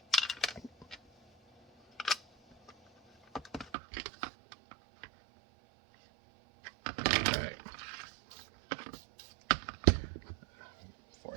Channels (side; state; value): left; drops out; at 3.7 s